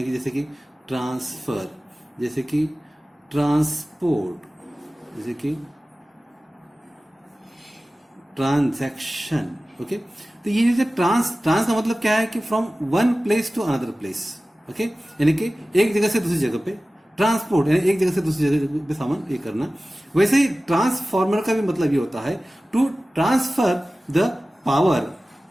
कि जैसे कि ट्रांसफर, जैसे कि ट्रांसपोर्ट, जैसे कि ट्रांजैक्शन. ओके, तो ये जैसे ट्रांस का मतलब क्या है कि from one place to another place. Okay, यानी कि एक जगह से दूसरी जगह पे ट्रांसपोर्ट, यानी एक जगह से दूसरी जगह पे सामान ये करना. वैसे ही ट्रांसफॉर्मर का भी मतलब ये होता है to transfer the power,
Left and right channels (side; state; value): both; normal; correlation 0.96